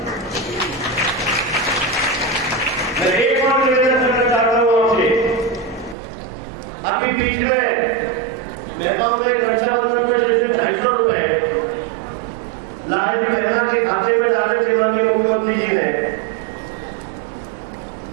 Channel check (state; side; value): drops out; left; at 6.0 s